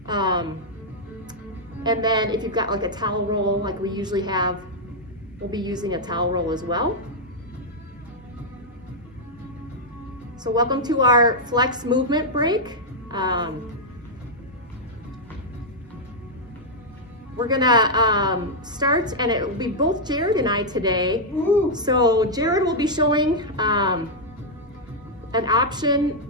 And then if you've got like a towel roll like we usually have, we'll be using a towel roll as well. So welcome to our flex movement break. We're gonna start, and it will be both Jared and I today. Ooh. So Jared will be showing an option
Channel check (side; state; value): both; normal; correlation -0.04